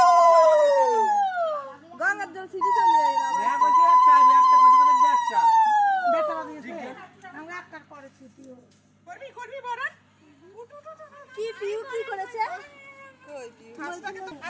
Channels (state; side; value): identical; both; correlation 1.00